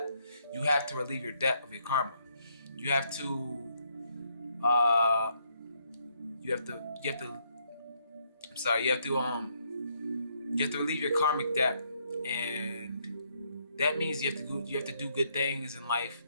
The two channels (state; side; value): inverted; both; correlation -0.73